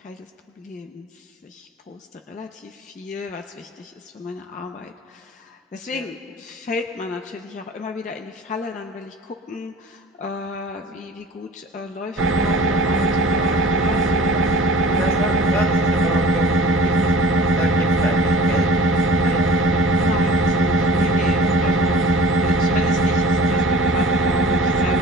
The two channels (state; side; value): normal; both; correlation 0.43